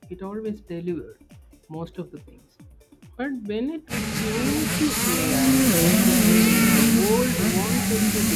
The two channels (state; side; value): identical; both; correlation 1.00